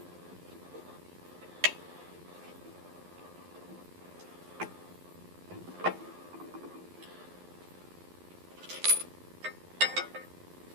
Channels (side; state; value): left; late; 11 ms